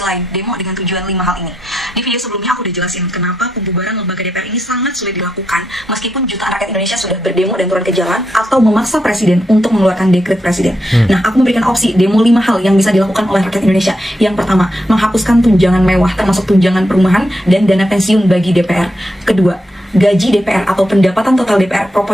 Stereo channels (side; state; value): both; normal; correlation 0.83